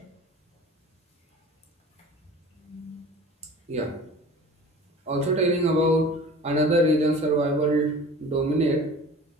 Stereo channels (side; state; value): both; normal; correlation 0.41